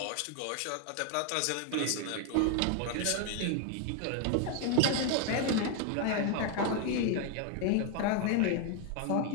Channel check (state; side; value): different; both; correlation 0.01